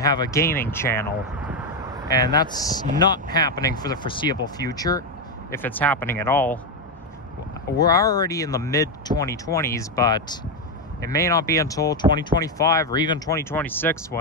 a gaming channel, and that's not happening for the foreseeable future, if it's happening at all. We're already in the mid-2020s, but it may not be until 2025 or even 2026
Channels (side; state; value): both; normal; correlation 0.07